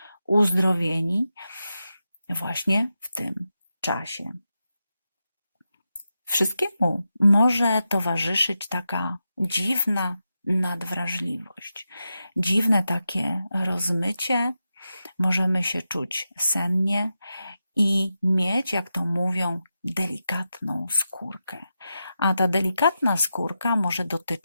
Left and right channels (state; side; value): inverted; both; correlation -0.89